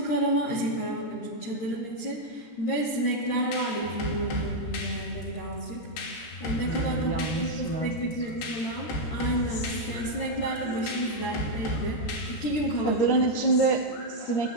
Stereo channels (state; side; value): late; right; 13 ms